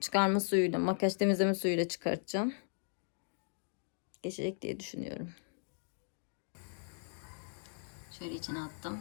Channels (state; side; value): silent; right; digital silence